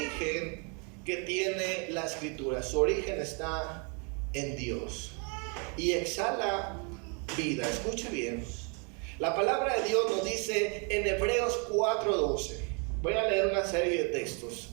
que tiene la Escritura. Su origen está en Dios y exhala vida. Escuche bien. La palabra de Dios nos dice en Hebreos 4:12. Voy a leer una serie de textos.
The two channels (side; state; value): left; quieter; 35.8 dB